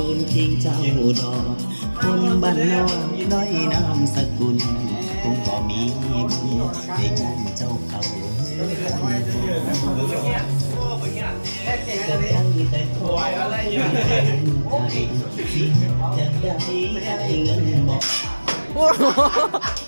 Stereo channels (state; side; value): inverted; both; correlation -1.00